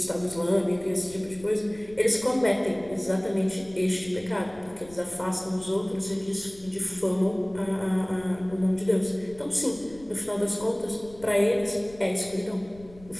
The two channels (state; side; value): noise; left; rumble, 22 dB below the sound